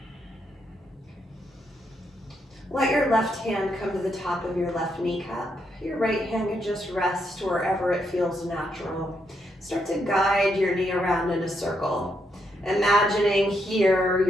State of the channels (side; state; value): both; normal; correlation 0.78